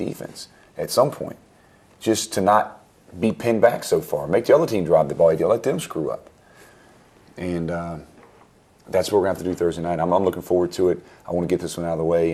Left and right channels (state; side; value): identical; both; correlation 1.00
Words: at some point, just to not be pinned back so far. Make the other team drive the ball. Let them screw up. And that's what we're going to have to do Thursday night. I'm looking forward to it. I want to get this one out of the way